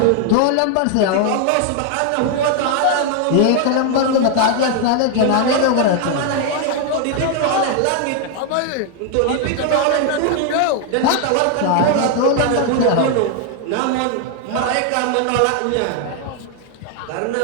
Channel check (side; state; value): both; different; correlation 0.00